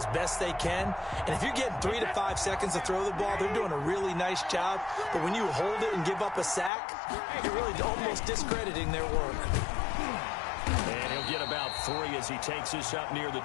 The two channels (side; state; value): right; drops out; at 6.7 s